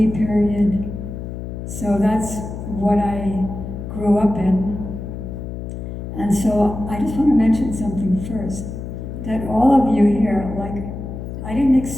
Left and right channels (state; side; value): noise; left; hum, 8 dB below the sound